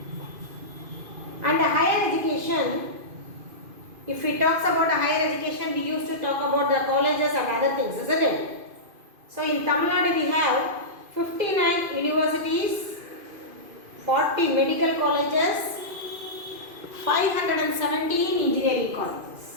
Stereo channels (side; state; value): left; late; 2.5 ms